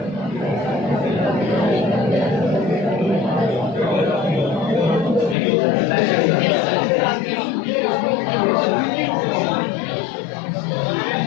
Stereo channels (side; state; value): right; drops out; at 5.4 s